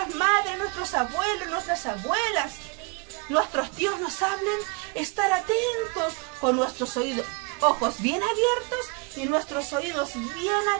madres, nuestros abuelos, nuestras abuelas, nuestros tíos nos hablen, estar atentos con nuestros ojos bien abiertos y nuestros oídos bien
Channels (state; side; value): quieter; left; 30.4 dB